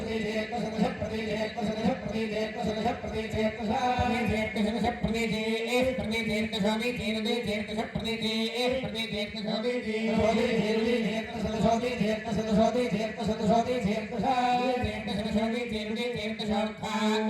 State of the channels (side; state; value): both; identical; correlation 1.00